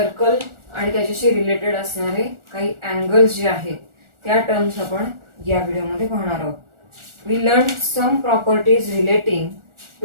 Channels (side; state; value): left; late; 1.4 ms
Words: आणि त्याच्याशी रिलेटेड असणारे काही अँगल्स जे आहेत त्या टर्म्स आपण या व्हिडिओमध्ये पाहणार आहोत. We learned some properties relating